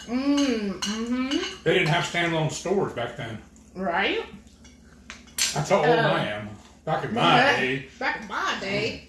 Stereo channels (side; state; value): both; identical; correlation 1.00